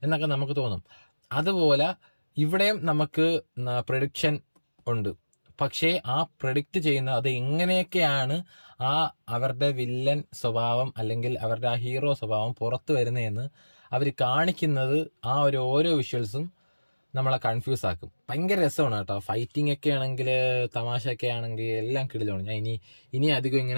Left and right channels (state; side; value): inverted; both; correlation -1.00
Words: എന്നൊക്കെ നമുക്ക് തോന്നും. അതുപോലെ ഇവിടെയും നമുക്ക് പ്രഡിക്ഷൻ ഉണ്ട്. പക്ഷേ ആ പ്രഡിക്റ്റ് ചെയ്യുന്ന അത് എങ്ങനെയൊക്കെയാണ് അവരുടെ വില്ലൻ സ്വഭാവം അല്ലെങ്കിൽ അവരുടെ ആ ഹീറോ സ്വഭാവം പുറത്തു വരുന്നതെന്ന് അവർ കാണിക്കുന്നത്. ഓരോ വിഷ്വൽസും നമ്മളെ കൺഫ്യൂസ് ആക്കും. ഭയങ്കര രസമാണ് കേട്ടോ. ഫൈറ്റിംഗ് ഒക്കെ ആണെങ്കിൽ, തമാശയൊക്കെ ആണെങ്കിൽ എല്ലാം കിടിലാണ്. ഞാൻ ഇനി അധികം